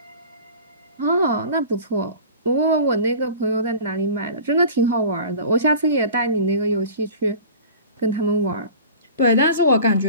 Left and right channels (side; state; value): both; inverted; correlation -0.40